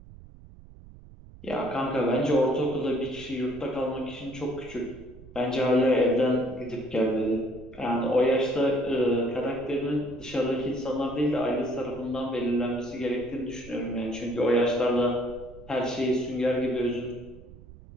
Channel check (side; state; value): right; noise; rumble, 19 dB below the sound